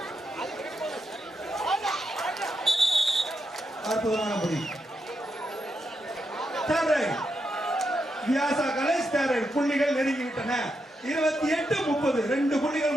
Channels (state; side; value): normal; both; correlation 0.84